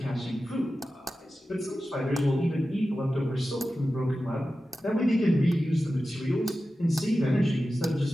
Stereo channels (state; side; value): normal; both; correlation 0.93